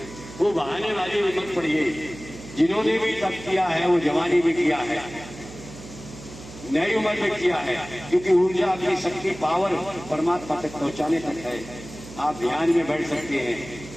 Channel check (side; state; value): right; noise; hum, 15 dB below the sound